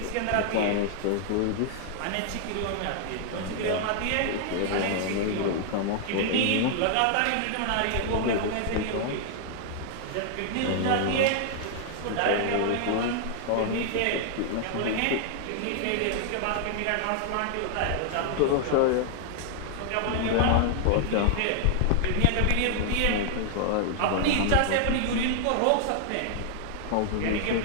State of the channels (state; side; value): different; both; correlation 0.00